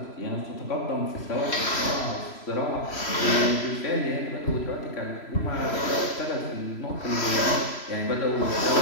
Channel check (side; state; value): right; late; 3.0 ms